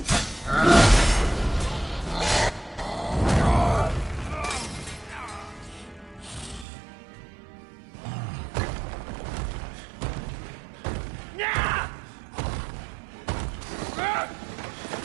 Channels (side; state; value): left; drops out; at 6.7 s